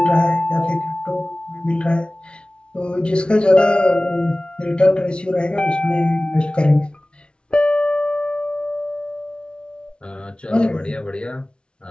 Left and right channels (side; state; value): right; late; 0.057 ms